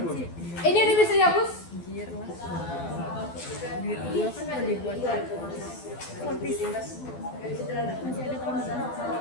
sih? Ini udah bisa dihapus? Anjir lah. Duit gua kan mau dibuat fortis. Masih ada tahun depan.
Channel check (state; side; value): late; right; 12 ms